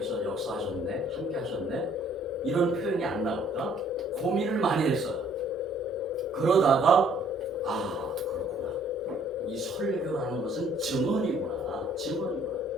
역사하셨네, 함께 하셨네, 이런 표현이 안 나올까? 고민을 많이 했어요. 그러다가 그렇구나. 이 설교라는 것은 증언이구나.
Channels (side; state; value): both; normal; correlation 0.61